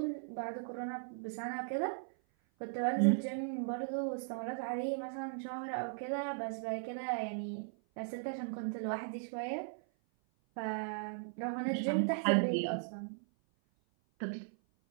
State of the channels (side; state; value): left; silent; 53 dB below the other